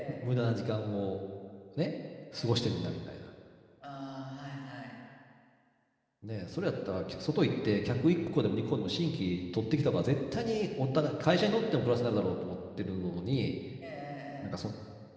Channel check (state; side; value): identical; both; correlation 1.00